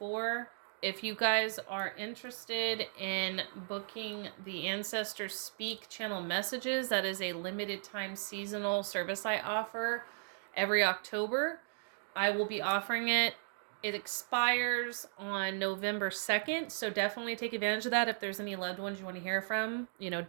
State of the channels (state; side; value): silent; left; digital silence